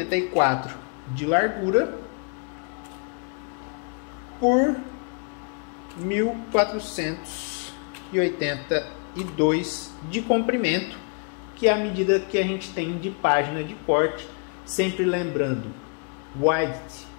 de largura por 1482 de comprimento, que é a medida que a gente tem de página de corte. Sempre lembrando, width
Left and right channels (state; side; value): quieter; right; 38.7 dB